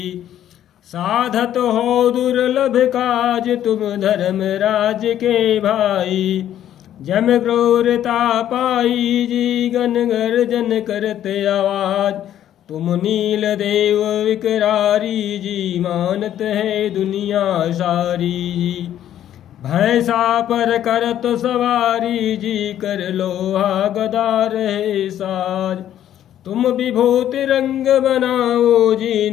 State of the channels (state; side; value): quieter; right; 11.2 dB